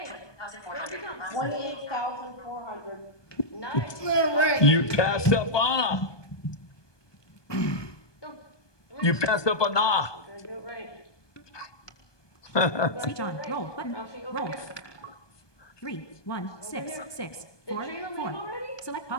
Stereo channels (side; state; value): right; late; 1.2 ms